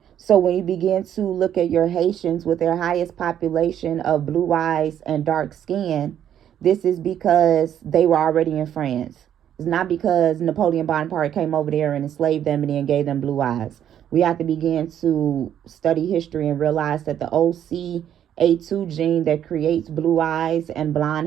So when you begin to look at your Haitians with their highest population of blue eyes and dark skin, this is because they were already in France. It's not because Napoleon Bonaparte came over there and enslaved them and then gave them blue eyes. We have to begin to study history and realize that the OCA2 gene that creates blue eyes and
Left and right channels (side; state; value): left; quieter; 10.1 dB